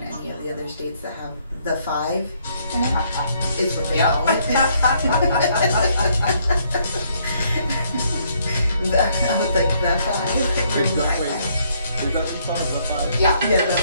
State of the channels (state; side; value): inverted; both; correlation -0.69